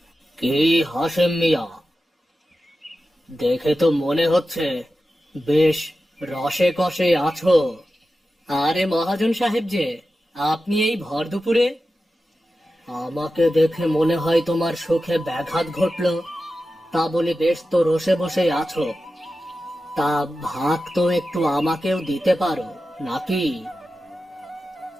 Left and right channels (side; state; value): both; normal; correlation 0.93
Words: কি হাসেম মিয়া, দেখে তো মনে হচ্ছে বেশ রসে কষে আছো। আরে মহাজন সাহেব যে, আপনি এই ভর দুপুরে? আমাকে দেখে মনে হয় তোমার সুখে ব্যাঘাত ঘটলো। তা বলে বেশ তো রসে বসে আছো। তা ভাগ তো একটু আমাকেও দিতে পারো নাকি?